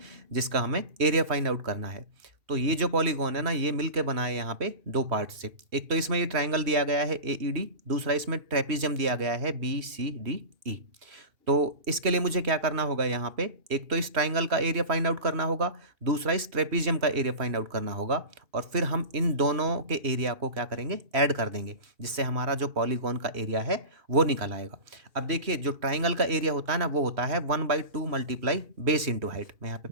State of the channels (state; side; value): late; left; 3.1 ms